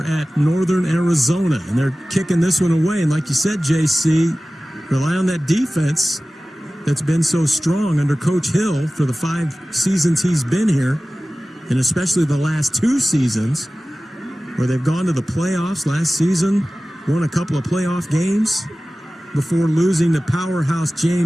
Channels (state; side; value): normal; both; correlation 0.97